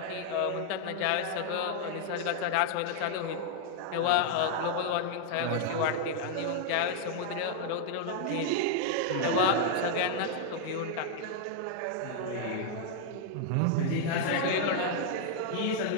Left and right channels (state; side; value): different; both; correlation 0.00